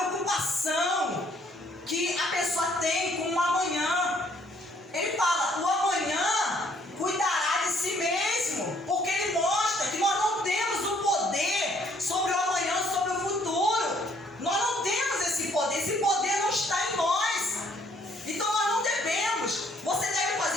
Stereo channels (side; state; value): both; normal; correlation 0.64